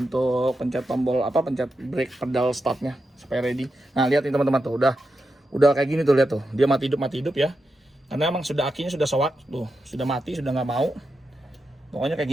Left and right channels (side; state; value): both; normal; correlation 0.88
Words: pencet tombol pencet brake pedal startnya supaya ready. Nah lihat nih teman-teman tuh udah kayak gini tuh, lihat tuh dia mati hidup ya. Karena emang sudah akinya sudah soak tuh, sudah mati, sudah nggak mau. Pokoknya kayak